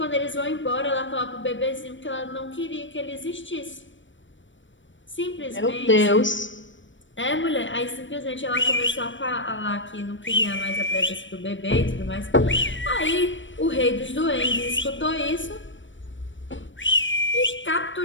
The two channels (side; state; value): right; late; 0.55 ms